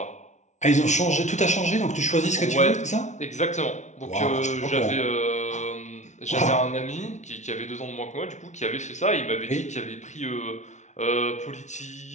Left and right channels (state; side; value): late; right; 0.34 ms